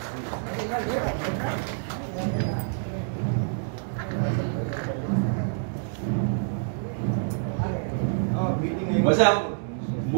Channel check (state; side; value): silent; left; digital silence